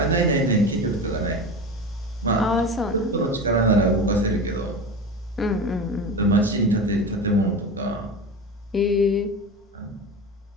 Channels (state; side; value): normal; both; correlation 0.28